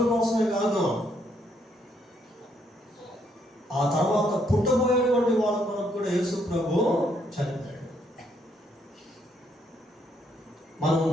కోసమే కాదు, ఆ తర్వాత పుట్టబోయేటువంటి వాళ్ళ కొరకు కూడా యేసుప్రభు చనిపోయాడు. మనం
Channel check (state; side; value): normal; both; correlation 0.72